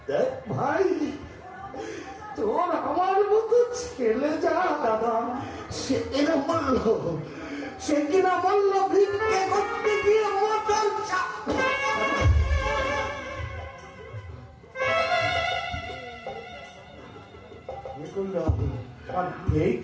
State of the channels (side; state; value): both; identical; correlation 1.00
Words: দেখ ভাই, তোর আমার মতো ছেলে যা দাদা সে কিনা বলল ভিক্ষে করতে গিয়ে মটর